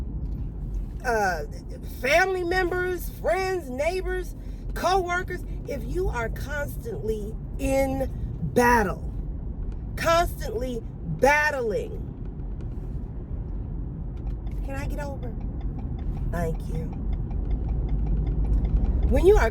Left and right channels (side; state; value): both; identical; correlation 1.00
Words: family members, friends, neighbors, co-workers. If you are constantly in battle, constantly battling, can I get over? Thank you. When you are